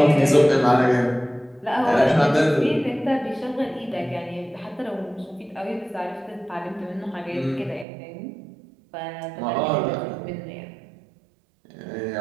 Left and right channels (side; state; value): left; drops out; at 7.9 s